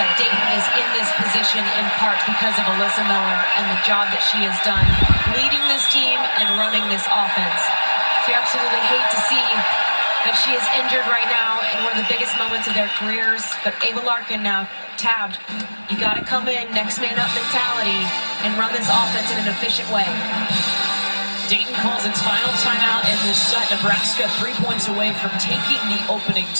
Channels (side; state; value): both; inverted; correlation -1.00